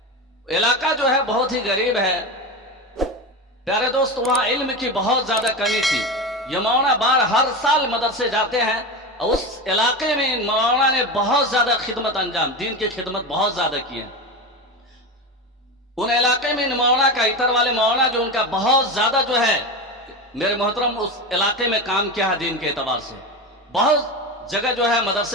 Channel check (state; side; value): normal; both; correlation 0.22